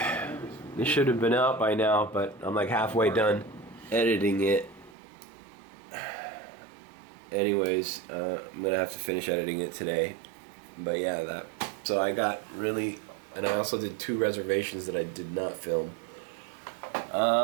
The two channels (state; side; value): drops out; left; at 5.0 s